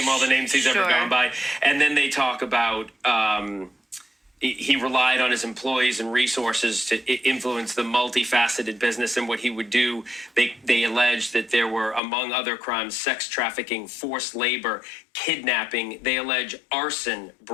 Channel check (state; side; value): drops out; right; at 12.0 s